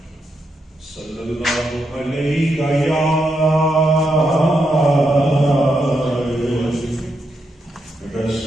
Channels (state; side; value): normal; both; correlation 0.82